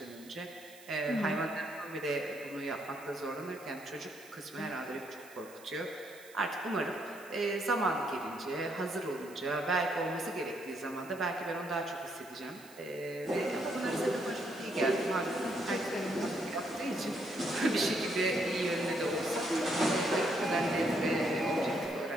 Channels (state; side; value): noise; right; hiss, 21 dB below the sound